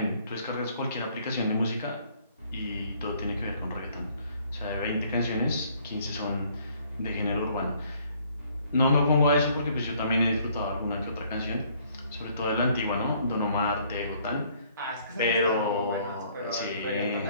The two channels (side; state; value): both; inverted; correlation -0.63